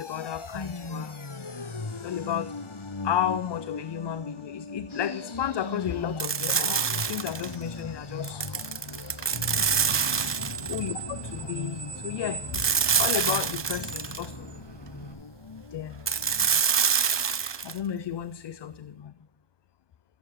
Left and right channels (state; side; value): late; right; 1.2 ms